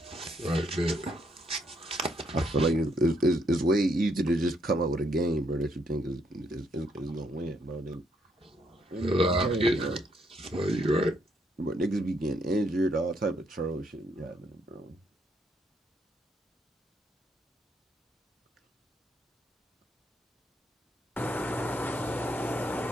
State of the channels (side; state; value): both; normal; correlation 0.73